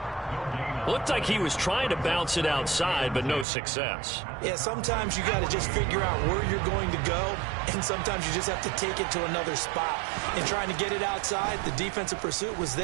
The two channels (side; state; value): left; drops out; at 3.5 s